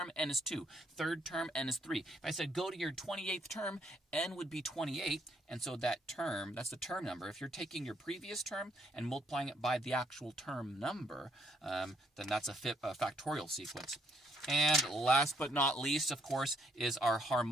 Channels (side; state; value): both; normal; correlation 0.70